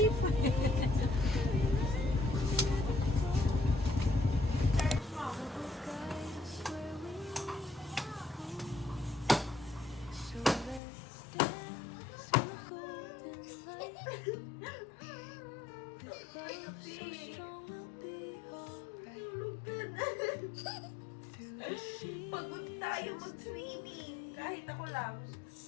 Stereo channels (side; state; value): right; drops out; at 10.8 s